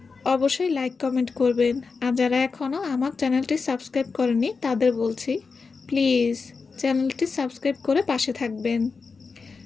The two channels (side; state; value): right; quieter; 4.7 dB